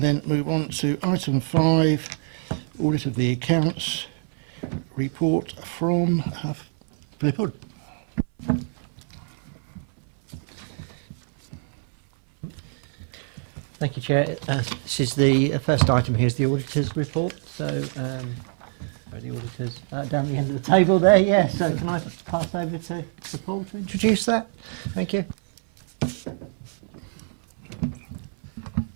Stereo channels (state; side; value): silent; left; 61 dB below the other